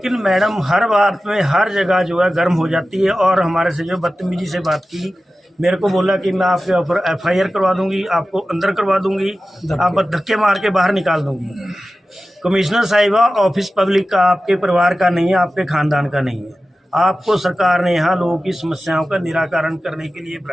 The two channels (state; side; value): normal; both; correlation 0.95